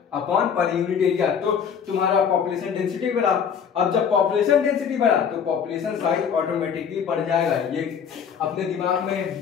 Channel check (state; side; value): quieter; right; 7.3 dB